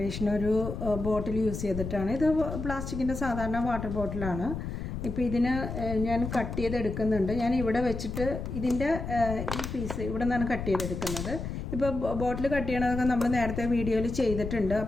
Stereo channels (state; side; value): noise; left; rumble, 6 dB below the sound